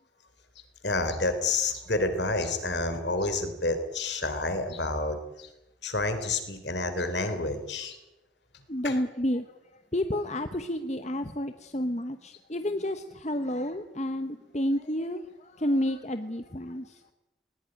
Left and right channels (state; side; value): normal; both; correlation 0.36